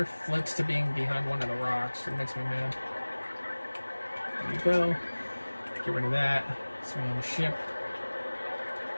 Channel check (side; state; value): both; inverted; correlation -1.00